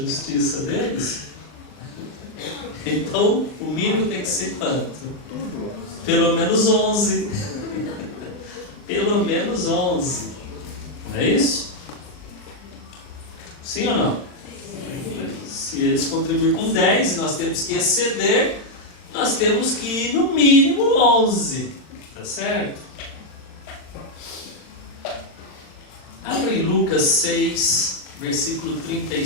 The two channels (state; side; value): late; right; 40 ms